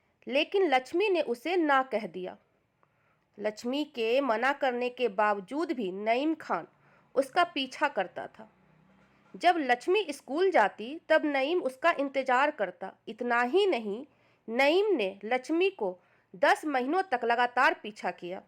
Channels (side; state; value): both; identical; correlation 1.00